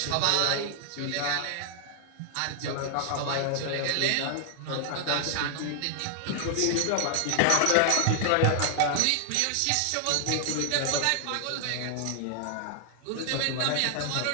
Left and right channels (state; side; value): different; both; correlation 0.00